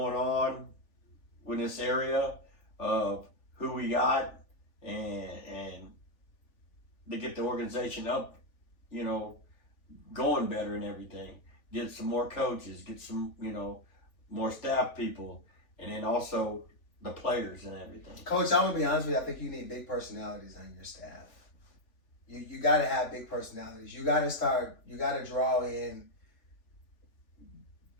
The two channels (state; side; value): late; right; 3.4 ms